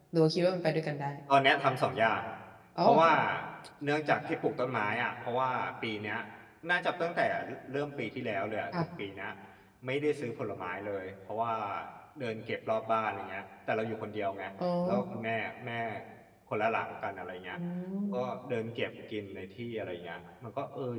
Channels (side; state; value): both; identical; correlation 1.00